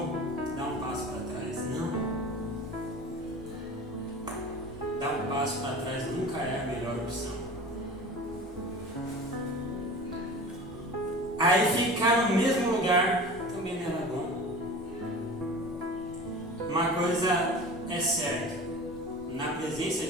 dar um passo para trás. Não. Dar um passo para trás nunca é a melhor opção. Aí ficar no mesmo lugar também não era bom. Uma coisa é certa, na presença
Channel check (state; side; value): normal; both; correlation 0.36